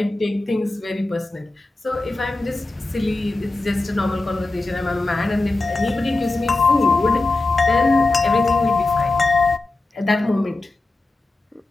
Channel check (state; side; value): quieter; right; 3.1 dB